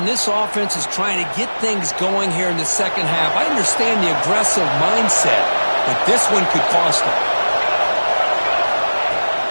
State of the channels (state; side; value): inverted; both; correlation -1.00